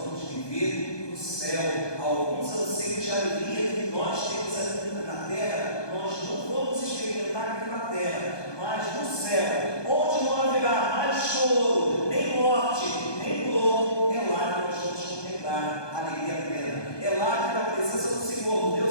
vamos viver no céu. Alguns anseios de alegria que nós temos aqui na terra, nós não vamos experimentar aqui na terra, mas no céu, onde não haverá mais choro, nem morte, nem dor, é lá que nós vamos contemplar a alegria plena. É lá que, na presença do Senhor,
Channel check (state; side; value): late; right; 1.2 ms